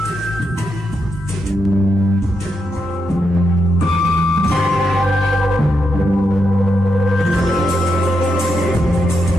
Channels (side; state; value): both; normal; correlation 0.83